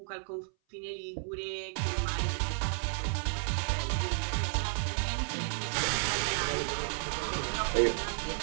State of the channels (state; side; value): silent; left; 56 dB below the other